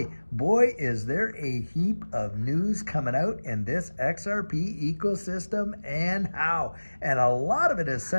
Boy, is there a heap of news coming out in this XRP ecosystem and how. And a lot of it is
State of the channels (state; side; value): inverted; both; correlation -1.00